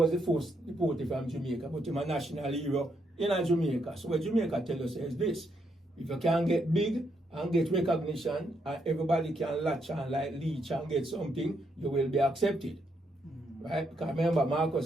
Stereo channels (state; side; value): normal; both; correlation 0.77